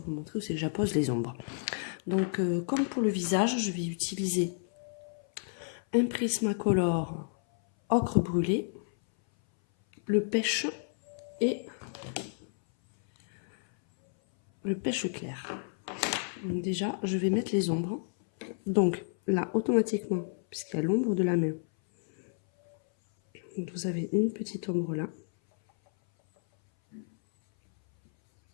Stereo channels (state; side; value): silent; right; 57 dB below the other